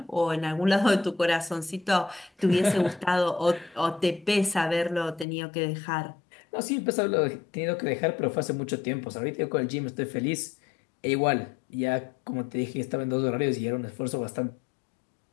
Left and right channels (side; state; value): right; drops out; at 5.2 s